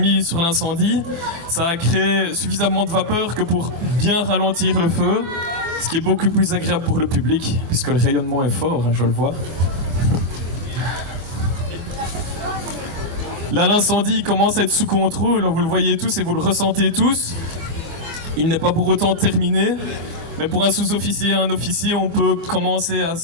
sur l'incendie. Ça a créé suffisamment de vapeur que pour bien ralentir le feu, ce qui est beaucoup plus agréable pour le public, puisque le rayonnement est fort, hein, je le vois. Là, l'incendie commence à être sous contrôle, vous le voyez tous et vous le ressentez tous. Il n'est pas pour autant terminé, mais pour un sous-officier et un officier, on peut commencer à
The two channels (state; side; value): late; left; 24 ms